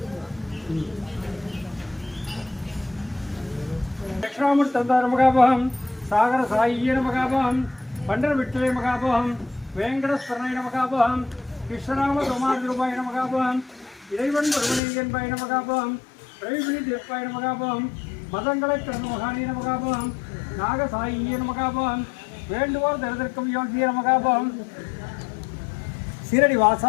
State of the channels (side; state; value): right; drops out; at 14.8 s